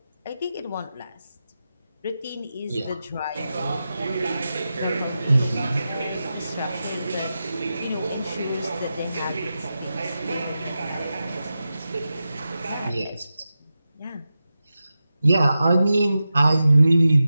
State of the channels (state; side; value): inverted; both; correlation -0.92